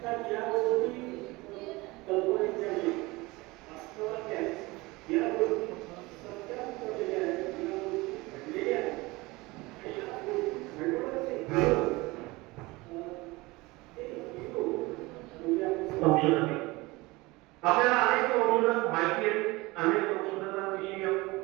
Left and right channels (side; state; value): left; quieter; 22.2 dB